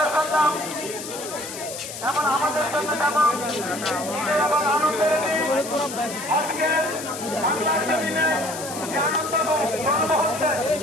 এমন আমাদের জন্য যেমন এবং আনন্দের আজকে বাংলার জমিনে যে আনন্দ গর্ব হচ্ছে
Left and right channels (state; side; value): noise; left; hiss, 10 dB below the sound